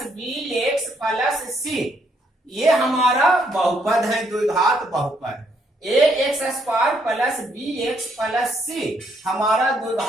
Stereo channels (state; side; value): normal; both; correlation 0.72